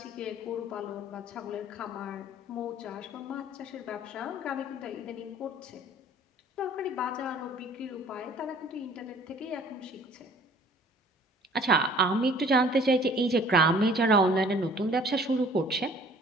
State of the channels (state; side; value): normal; both; correlation 0.52